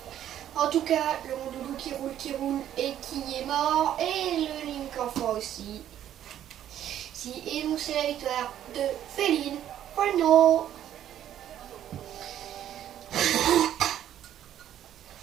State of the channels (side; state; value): left; quieter; 11.1 dB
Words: En tout cas, le Rondoudou qui roule et qui est mort, et le Link enfant aussi. Et donc c'est la victoire de Féline. Bueno.